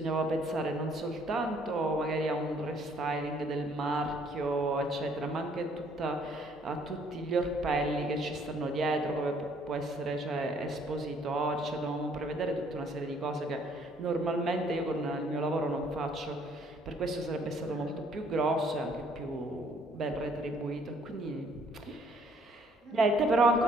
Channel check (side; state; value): both; normal; correlation 0.63